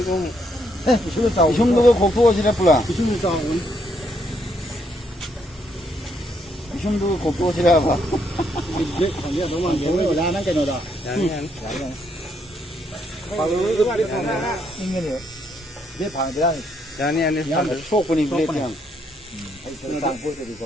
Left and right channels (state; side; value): normal; both; correlation 0.73